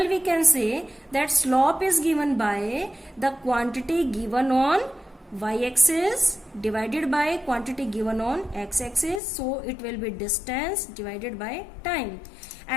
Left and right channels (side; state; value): right; drops out; at 9.2 s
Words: we can say that slope is given by the quantity given on y-axis divided by quantity given on x-axis. So it will be distance divided by time.